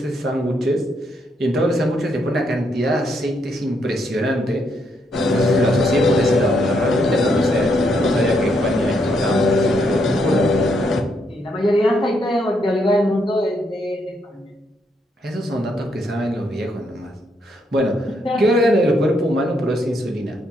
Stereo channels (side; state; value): both; normal; correlation 0.76